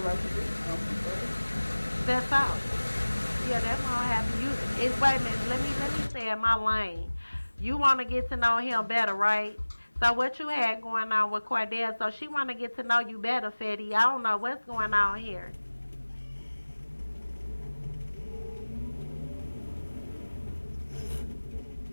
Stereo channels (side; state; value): both; inverted; correlation -1.00